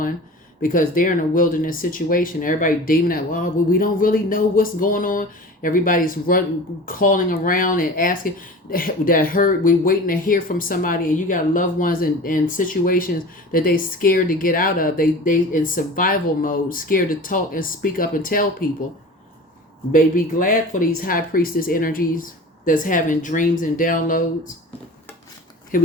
because they're in a wilderness situation. Everybody demoning, well, we don't really know what's going on. Everybody's calling around and asking we're waiting to hear from somebody, and you got loved ones in situations that they scared to get out of. They in survival mode, scared to talk and speak up and tell people. Be glad for these high priestess energies that's having dreams and downloads. Here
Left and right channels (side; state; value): both; normal; correlation 0.37